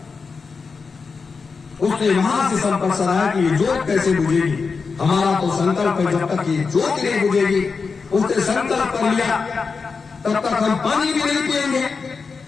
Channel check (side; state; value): right; quieter; 4.9 dB